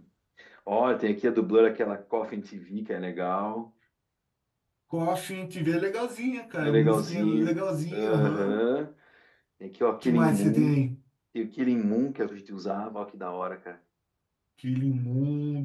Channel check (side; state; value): both; identical; correlation 1.00